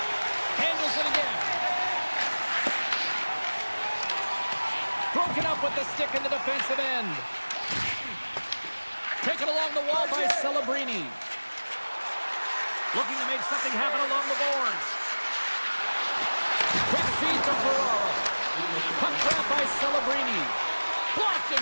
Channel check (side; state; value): both; inverted; correlation -1.00